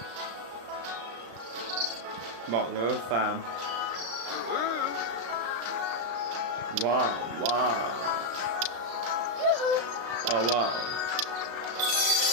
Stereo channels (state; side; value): late; left; 35 ms